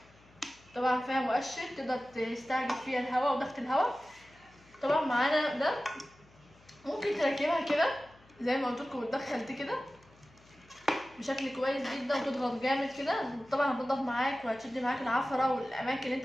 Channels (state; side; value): noise; left; hum, 28 dB below the sound